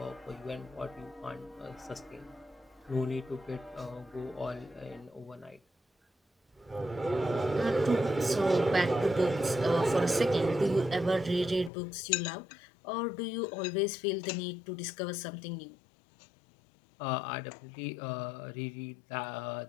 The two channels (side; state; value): right; drops out; at 11.7 s